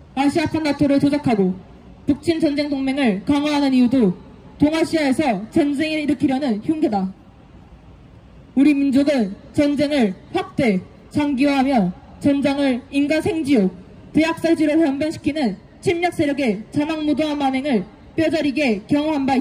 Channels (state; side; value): identical; both; correlation 1.00